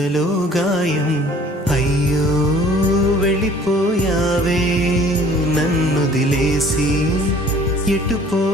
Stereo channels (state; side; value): normal; both; correlation 0.53